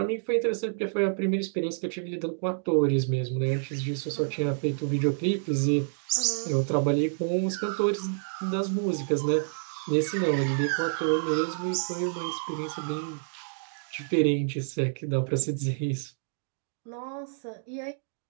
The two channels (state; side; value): silent; left; digital silence